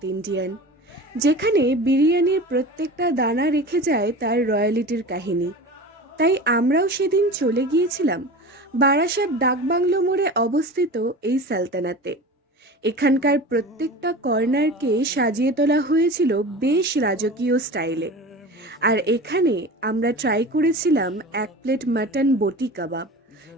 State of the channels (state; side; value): normal; both; correlation 0.34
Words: Indian, যেখানে বিরিয়ানির প্রত্যেকটা দানা রেখে যায় তার রয়্যালিটির কাহিনী। তাই আমরাও সেদিন চলে গিয়েছিলাম বারাসাত ডাকবাংলো মোড়ে অবস্থিত এই সালতানাতে। এখানকার প্রত্যেকটা কর্নারকে সাজিয়ে তোলা হয়েছিল বেশ রাজকীয় স্টাইলে। আর এখানে আমরা ট্রাই করেছিলাম 1 প্লেট মাটন বটি কাবাব,